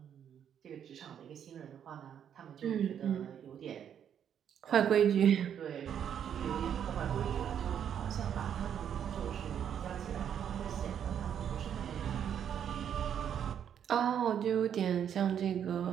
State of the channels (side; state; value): left; quieter; 8.9 dB